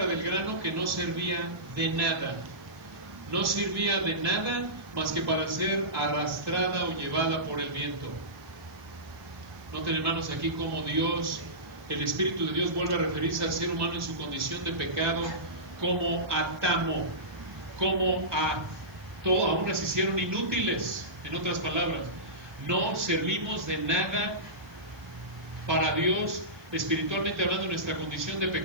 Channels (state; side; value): noise; right; hiss, 30 dB below the sound